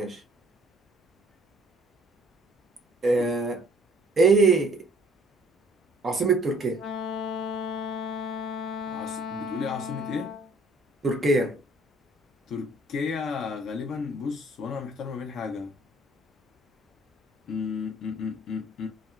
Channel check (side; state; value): both; normal; correlation 0.58